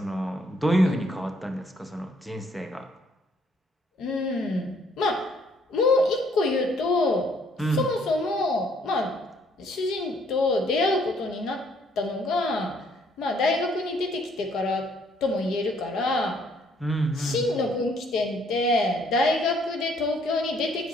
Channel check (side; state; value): both; normal; correlation 0.65